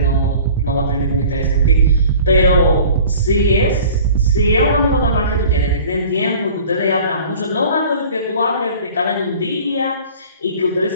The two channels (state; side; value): inverted; both; correlation -0.45